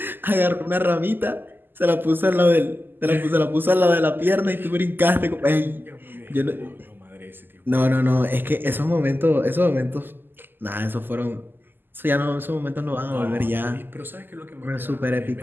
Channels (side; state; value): left; late; 0.093 ms